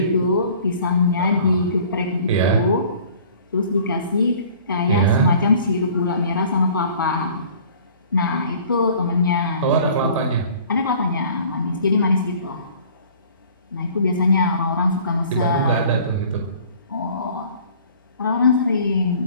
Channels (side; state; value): both; inverted; correlation -0.50